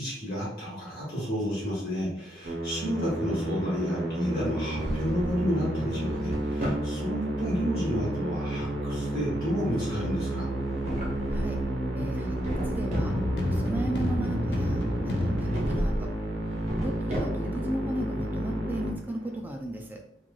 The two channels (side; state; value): both; normal; correlation 0.81